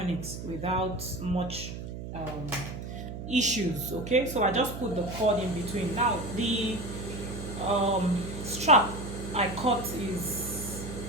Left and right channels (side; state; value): right; noise; hum, 8 dB below the sound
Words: it without much issues. Okay, so I just put the cord in between. Now the strap I cut is